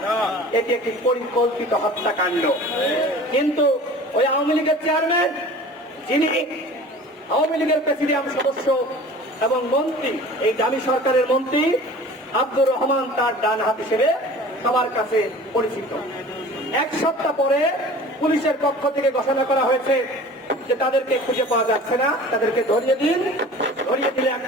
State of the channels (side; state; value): both; normal; correlation 0.42